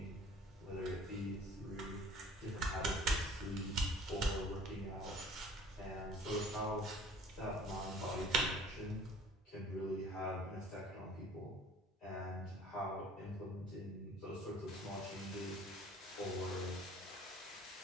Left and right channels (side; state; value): both; normal; correlation 0.50